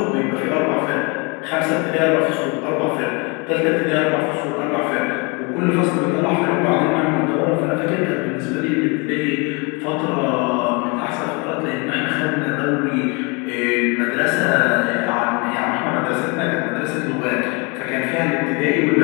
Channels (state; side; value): quieter; right; 30.6 dB